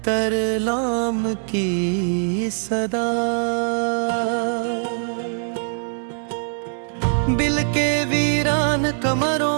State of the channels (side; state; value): left; silent; digital silence